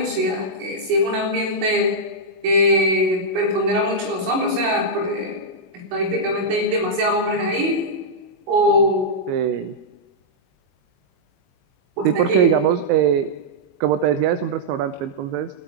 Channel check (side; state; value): left; late; 22 ms